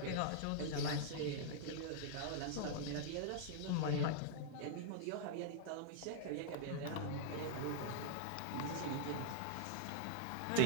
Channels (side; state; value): both; different; correlation -0.01